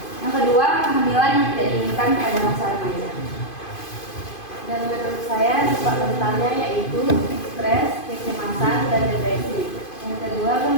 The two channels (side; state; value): right; late; 2.5 ms